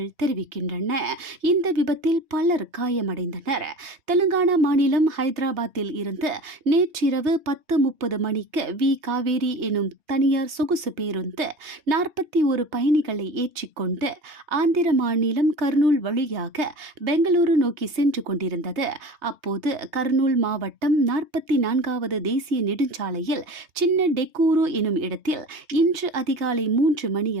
தெரிவிக்கின்றன. இந்த விபத்தில் பலர் காயமடைந்தனர். தெலுங்கானா மாநிலம் ஹைதராபாத்தில் இருந்து நேற்றிரவு 10:30 மணிக்கு காவேரி எனும் தனியார் சொகுசு பேருந்து 41 பயணிகளை ஏற்றிக்கொண்டு ஆந்திர மாநிலம் கர்னூல் வழியாக பெங்களூரு நோக்கி சென்று கொண்டிருந்தது. அப்போது கர்னூல் மாவட்டம் 44வது தேசிய நெடுஞ்சாலையில் சின்ன டெக்கூரு எனும் இடத்தில் இன்று அதிகாலை 3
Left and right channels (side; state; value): left; late; 2.8 ms